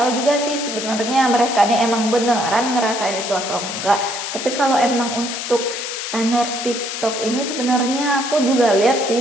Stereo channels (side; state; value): left; noise; hiss, 5 dB below the sound